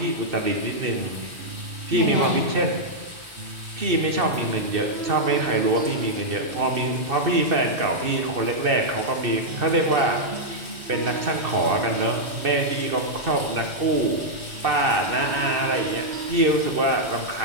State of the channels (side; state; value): left; late; 1.4 ms